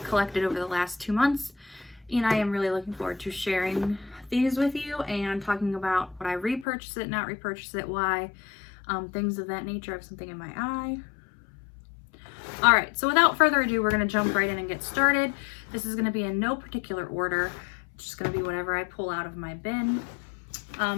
collected over the last 2 months, and I am really looking forward to sharing these with you and talking about what I repurchase it, not repurchase it, why, things of that nature. I have something in my eye. All right, so without further ado, we're gonna jump right in and get started. This is gonna be in no particular order. It's just gonna be whatever I pull out of my bin.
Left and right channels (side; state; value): right; drops out; at 6.7 s